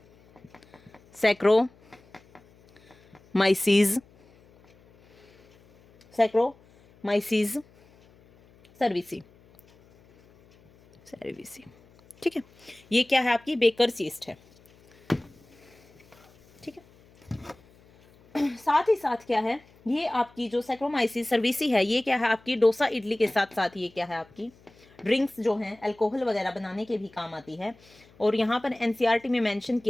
सैक्रोमाइसीज सर्विसी। ठीक है, ये क्या है आपकी बेकर्स यीस्ट है। ठीक है, साथ ही साथ क्या है, ये आपकी जो सैक्रोमाइसीस सर्विसी है, ये क्या है आपकी डोसा इडली के साथ साथ ये क्या है आपकी ड्रिंक्स जो हैं अल्कोहल वगैरह बनाने के भी काम आती है। और यहाँ पर एनसीईआरटी में मेंशन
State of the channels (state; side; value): noise; left; hum, 28 dB below the sound